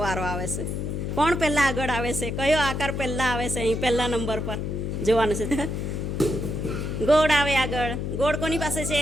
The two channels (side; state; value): left; noise; hum, 3 dB below the sound